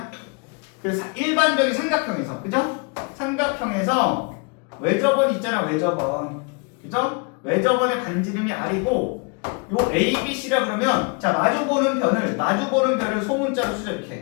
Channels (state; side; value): quieter; right; 33.0 dB